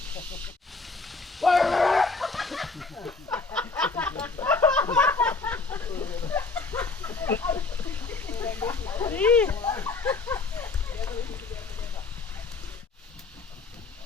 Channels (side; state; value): right; quieter; 4.1 dB